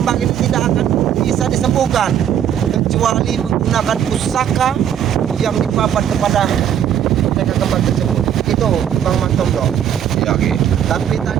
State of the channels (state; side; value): quieter; left; 9.5 dB